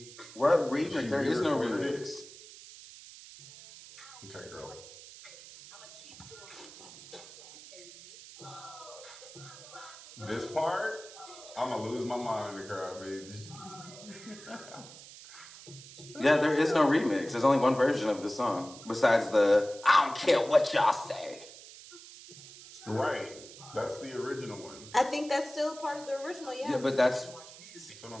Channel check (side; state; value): right; noise; hiss, 17 dB below the sound